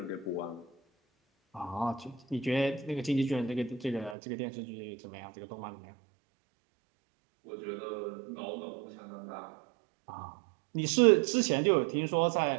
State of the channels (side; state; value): left; drops out; at 4.2 s